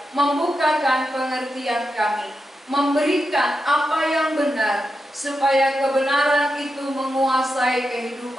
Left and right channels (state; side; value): normal; both; correlation 0.88